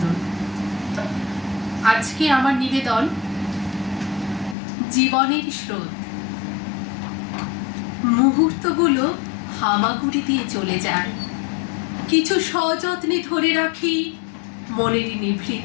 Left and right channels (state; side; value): drops out; right; at 4.5 s